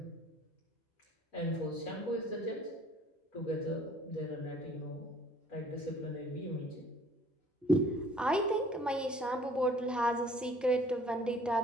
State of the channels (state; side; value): normal; both; correlation 0.54